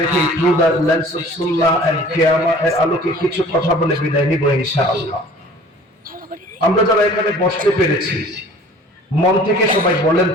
রেখে through the lens of Sunnah and কিয়ামা এর আলোকে কিছু কথা বলে বিদায় নিব ইনশাআল্লাহ। আমরা যারা এখানে বসতে পেরেছি, মন থেকে সবাই বলেন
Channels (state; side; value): normal; both; correlation 0.49